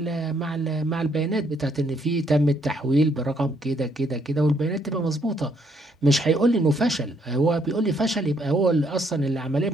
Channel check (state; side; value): normal; both; correlation 0.70